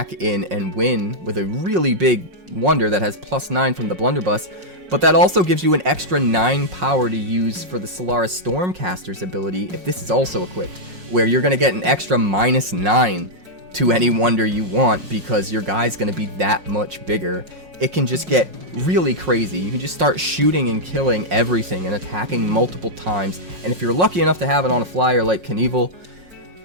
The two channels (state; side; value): late; left; 5.5 ms